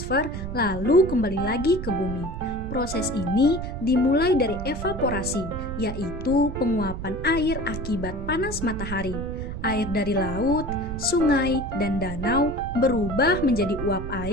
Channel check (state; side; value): noise; right; rumble, 7 dB below the sound